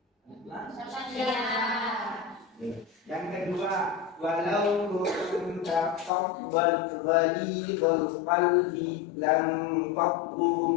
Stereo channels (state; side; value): drops out; right; at 6.1 s